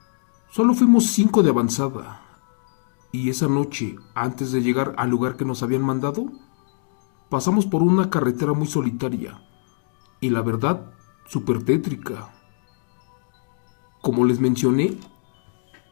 solo fuimos 5 de avanzada, y esa noche, antes de llegar al lugar que nos habían mandado, pasamos por una carretera muy solitaria, y la verdad, súper tétrica. Como les mencioné,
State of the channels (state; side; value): silent; right; digital silence